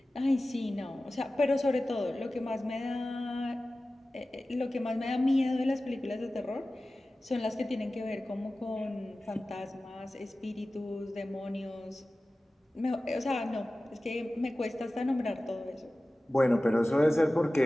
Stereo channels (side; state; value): both; normal; correlation 0.96